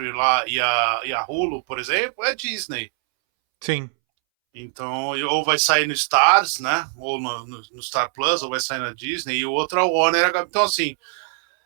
lá e a Hulu, por exemplo, é Disney. Sim. Então, ou vai sair no Stars, né? Ou no Star Plus, ou vai sair na Disney, e o outro é o Warner. Então, assim,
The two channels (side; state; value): left; silent; 64 dB below the other